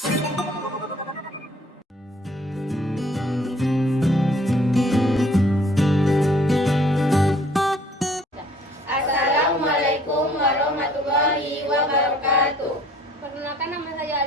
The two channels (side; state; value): both; normal; correlation 0.57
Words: warahmatullahi wabarakatuh. Perkenalkan, nama saya